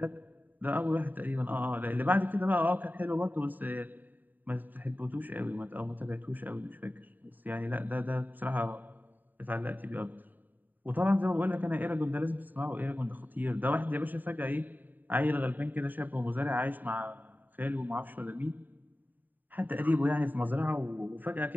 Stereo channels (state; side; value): late; left; 0.088 ms